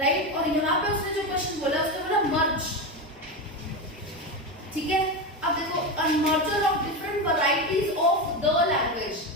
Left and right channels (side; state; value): both; normal; correlation 0.17